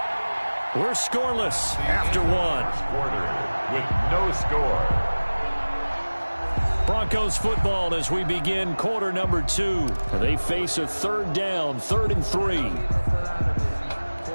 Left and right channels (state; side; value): inverted; both; correlation -1.00